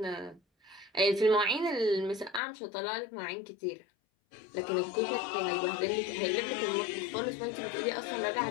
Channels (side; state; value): right; drops out; at 2.4 s